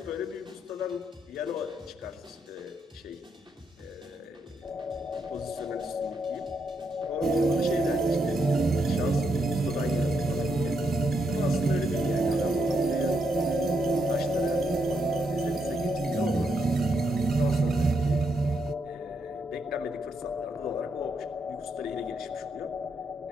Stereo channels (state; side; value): normal; both; correlation 0.79